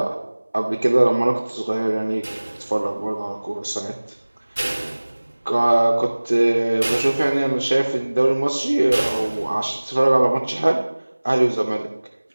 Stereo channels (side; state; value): both; inverted; correlation -1.00